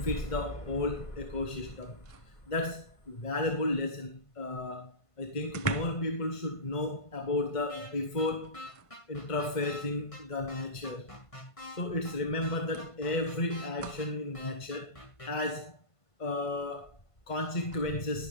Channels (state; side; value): late; right; 1.5 ms